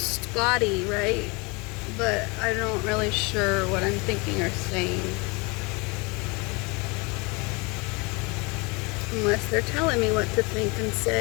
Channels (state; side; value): quieter; right; 28.1 dB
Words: body, right? But I don't really sure what I'm thinking or saying. Unless they're telling me what to think and